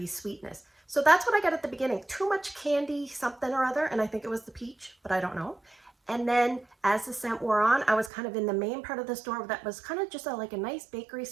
sweetness. So that's what I got at the beginning. Too much candy, something or other, and I think it was the peach, but I don't know. And then as the scent wore on, I was kind of in the main part of the store that was kind of just like a nice bakery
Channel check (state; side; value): drops out; left; at 8.1 s